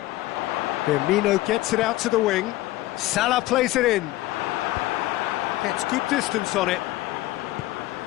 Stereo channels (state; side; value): quieter; right; 17.2 dB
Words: Firmino gets it out to the wing. Salah plays it in. Gets good distance on it.